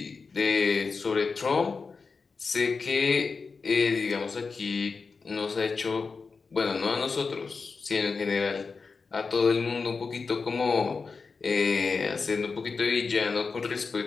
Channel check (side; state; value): right; quieter; 4.7 dB